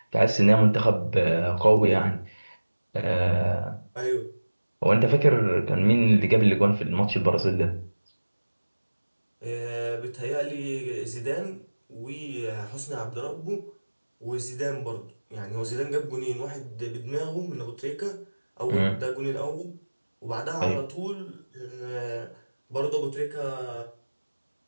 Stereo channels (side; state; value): both; inverted; correlation -1.00